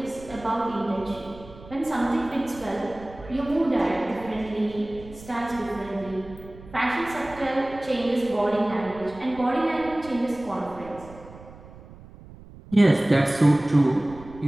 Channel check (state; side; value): noise; right; rumble, 19 dB below the sound